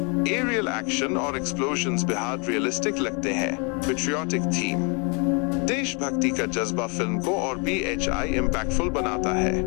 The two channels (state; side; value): quieter; right; 34.4 dB